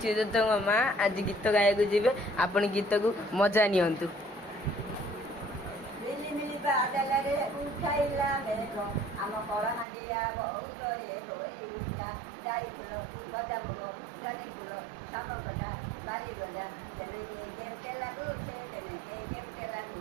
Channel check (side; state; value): left; drops out; at 9.9 s